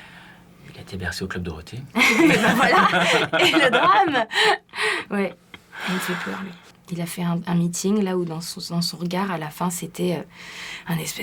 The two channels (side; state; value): both; identical; correlation 1.00